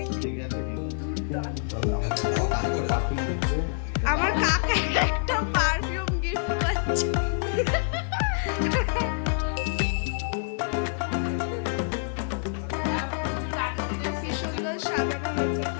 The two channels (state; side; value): silent; right; digital silence